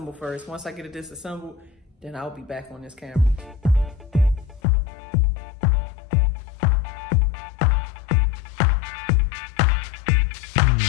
first. Once I get it disassembled, then I'll be back on this camera.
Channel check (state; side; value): drops out; right; at 4.6 s